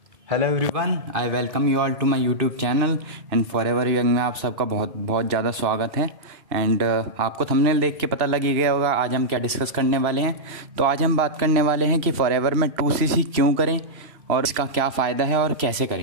Hello everyone, I welcome you all to my YouTube channel and forever young में आप सबका बहुत बहुत ज़्यादा स्वागत है। एंड आपको थंबनेल देख के पता लग ही गया होगा आज हम क्या डिस्कस करने वाले हैं। तो आज हम बात करने वाले हैं कि फॉरएवर में 2cc क्यों करें और इसका क्या फ़ायदा है और कैसे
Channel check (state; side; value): late; left; 3.0 ms